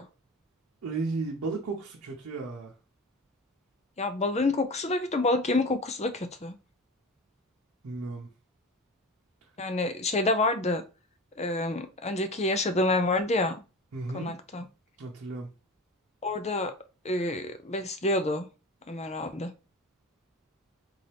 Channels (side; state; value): both; normal; correlation 0.31